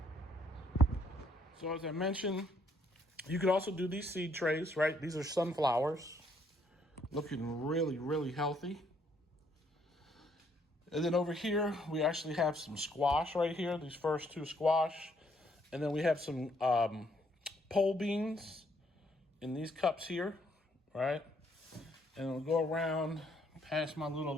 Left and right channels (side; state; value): both; normal; correlation 0.69